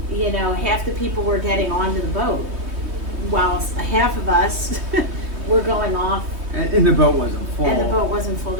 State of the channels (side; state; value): left; late; 3.2 ms